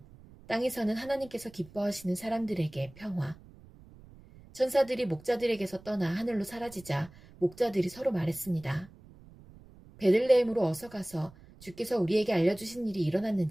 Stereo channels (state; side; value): noise; right; rumble, 22 dB below the sound